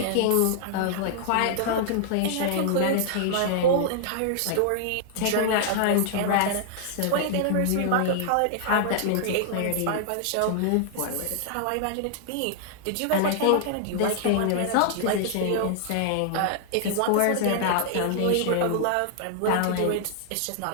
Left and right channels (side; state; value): both; different; correlation -0.01